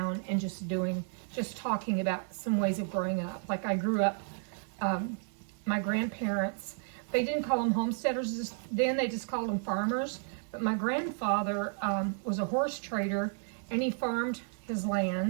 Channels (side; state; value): left; silent; 56 dB below the other